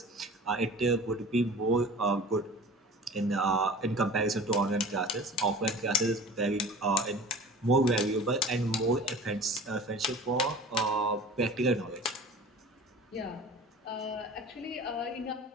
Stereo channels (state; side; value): normal; both; correlation 0.41